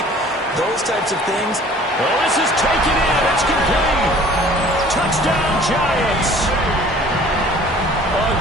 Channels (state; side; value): normal; both; correlation 0.50